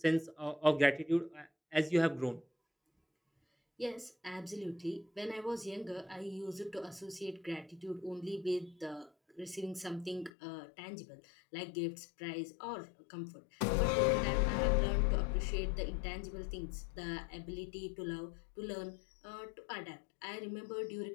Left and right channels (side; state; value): right; drops out; at 10.3 s